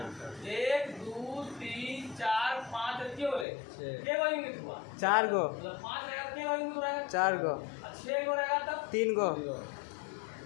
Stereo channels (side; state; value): right; drops out; at 3.5 s